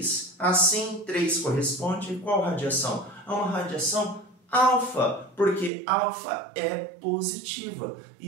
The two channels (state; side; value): drops out; left; at 5.7 s